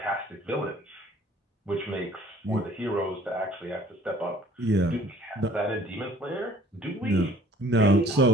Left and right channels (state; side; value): normal; both; correlation 0.54